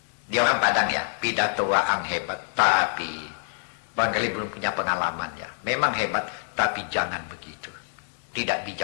dia orang Padang ya, pidato waang hebat, tapi barangkali belum punya pengalaman ya. Memang hebat, tapi jangan begitu. Tidak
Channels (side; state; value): right; silent; 61 dB below the other